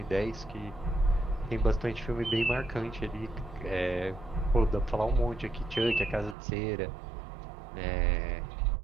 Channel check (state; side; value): drops out; left; at 6.4 s